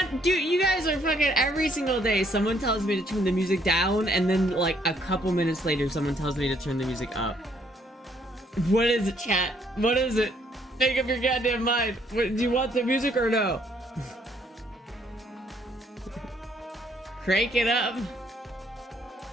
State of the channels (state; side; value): normal; both; correlation 0.67